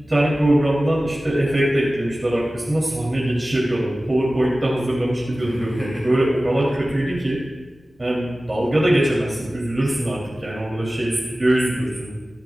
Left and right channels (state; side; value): normal; both; correlation 0.96